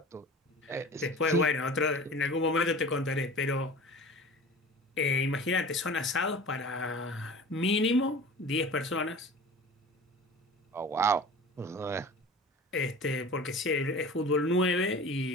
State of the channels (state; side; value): normal; both; correlation 0.38